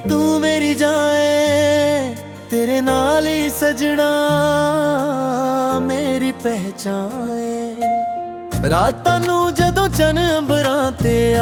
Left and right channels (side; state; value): both; identical; correlation 1.00